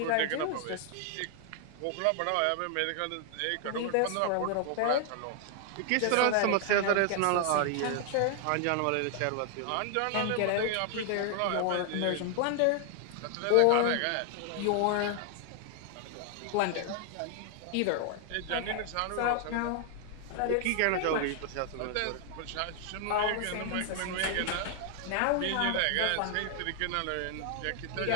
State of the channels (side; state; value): both; different; correlation 0.00